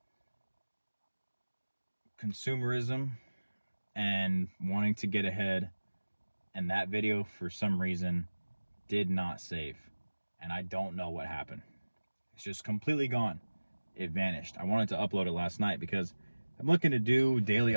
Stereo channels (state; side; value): inverted; both; correlation -1.00